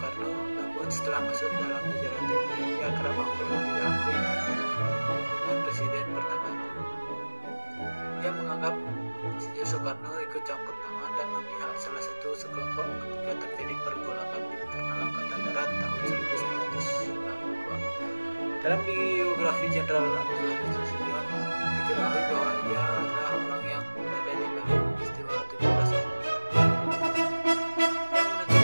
namun setelah masuk dalam jajaran TNI ia kerap akur dan tidak akur dengan presiden pertama itu. Ia menganggap Insinyur Soekarno ikut campur tangan dan memihak salah satu sekelompok ketika terjadi pergolakan di internal Angkatan Darat tahun 1962. Dalam biografi Jenderal Abdul Haris Nasution diketahui bahwa ia adalah orang yang berada di balik peristiwa 17 Oktober yang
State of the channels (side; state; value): both; inverted; correlation -1.00